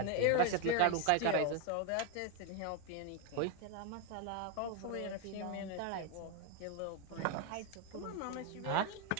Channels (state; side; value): different; both; correlation 0.01